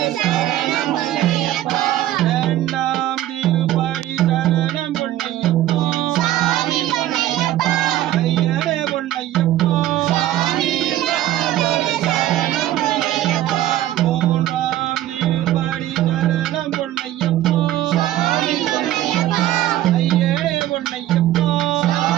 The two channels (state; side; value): quieter; left; 13.7 dB